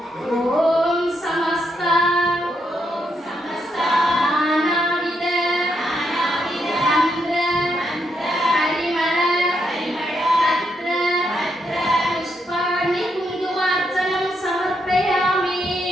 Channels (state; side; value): normal; both; correlation 0.79